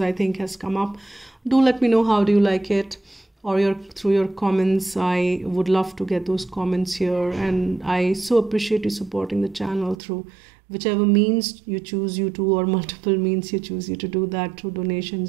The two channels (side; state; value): left; drops out; at 10.0 s